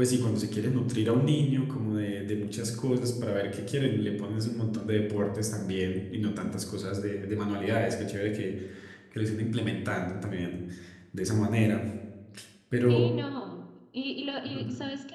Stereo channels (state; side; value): identical; both; correlation 1.00